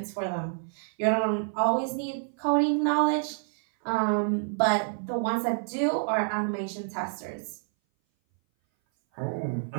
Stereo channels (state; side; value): silent; left; 58 dB below the other